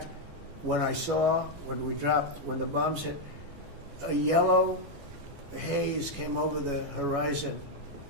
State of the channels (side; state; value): left; late; 14 ms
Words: when the bombs hit, a yellow haze came over the horizon